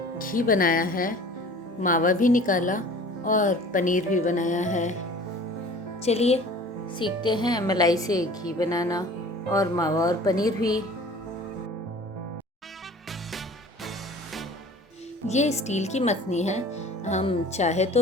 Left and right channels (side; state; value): both; normal; correlation 0.45